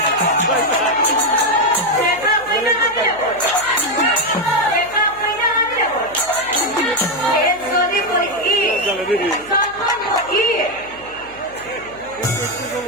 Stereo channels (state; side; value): noise; right; hum, 24 dB below the sound